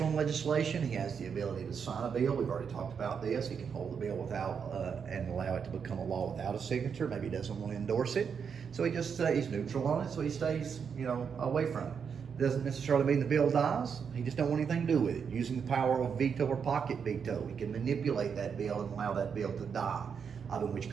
on legislation. He has the ability to sign a bill. We've already talked about this. He can hold the bill without and allow it to become a law without a signature. Maybe he doesn't want to endorse it, so he just stays neutral on it. So he stays, away from it. Doesn't necessarily mean the bill dies. He just don't want anything to do with it. Using the power of veto or pocket veto, he can manipulate that bill and allow that bill to die, other than which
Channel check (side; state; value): left; quieter; 6.7 dB